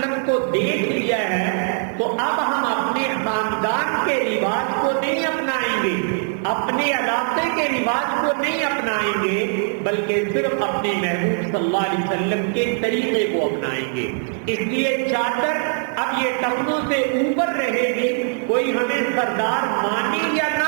کو دیکھ لیا ہے تو اب ہم اپنے خاندان کے رواج کو نہیں اپنائیں گے، اپنے علاقے کے رواج کو نہیں اپنائیں گے، بلکہ صرف اپنے محبوب صلی اللہ علیہ وسلم کے طریقے کو اپنائیں گے. اس لیے چادر اب یہ ٹخنوں سے اوپر رہے گی، کوئی ہمیں سردار مانے یا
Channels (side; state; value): left; silent; 65 dB below the other